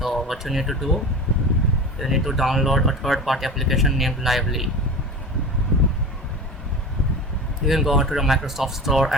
what you need to do, you need to download a third-party application named Lively. You can go to the Microsoft Store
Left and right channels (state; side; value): normal; both; correlation 0.32